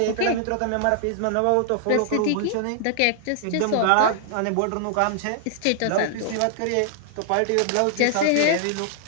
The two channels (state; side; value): different; both; correlation -0.01